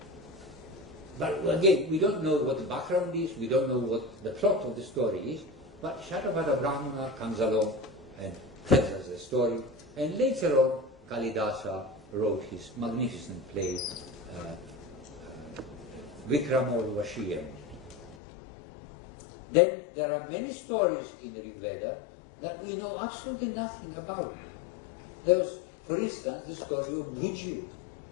But again, we don't know what the background is, we don't know what the plot of the story is, but Shatapatha Brahmana comes along and tells us the story, and later on Kalidasa wrote his magnificent play Vikramorvashiyam. Then there are many stories in the Rig Veda that we know absolutely nothing about. There was, for instance, the story of Bhuju.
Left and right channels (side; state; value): right; drops out; at 18.2 s